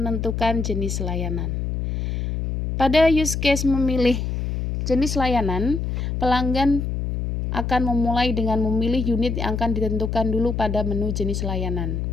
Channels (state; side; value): noise; left; hum, 2 dB below the sound